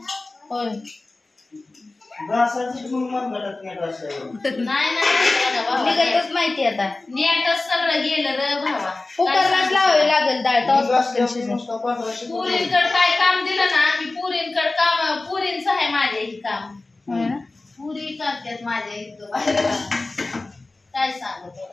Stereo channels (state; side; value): quieter; right; 3.2 dB